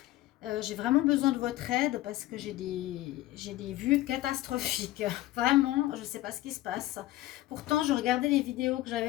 J'ai vraiment besoin de votre aide parce que j'ai des vues catastrophiques. Vraiment, je ne sais pas ce qui se passe. Pourtant, je regardais les vidéos que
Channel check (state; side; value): quieter; right; 16.2 dB